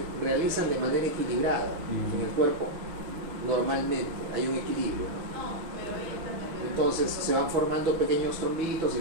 realizan de manera equilibrada en el cuerpo. Normalmente hay un equilibrio, ¿no? Entonces se van formando pequeños trombitos y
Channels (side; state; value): left; late; 6.3 ms